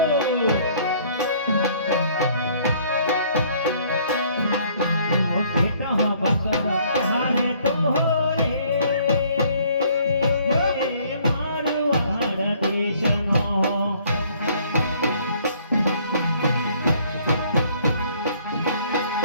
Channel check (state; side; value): inverted; both; correlation -0.60